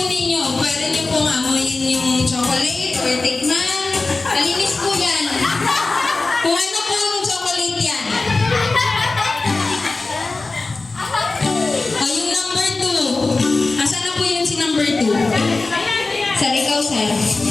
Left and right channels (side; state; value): right; quieter; 3.5 dB